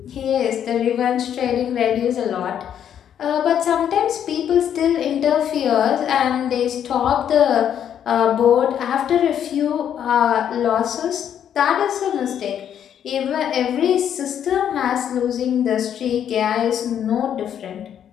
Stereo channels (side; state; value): right; quieter; 9.4 dB